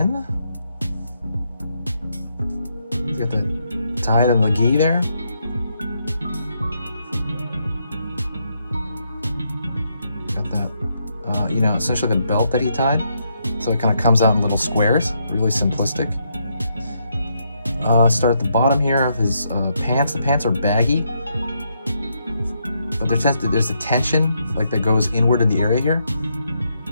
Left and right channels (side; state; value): both; inverted; correlation -0.77